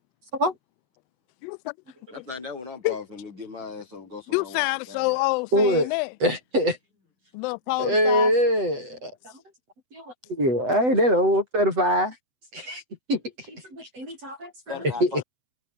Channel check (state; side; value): late; left; 8.0 ms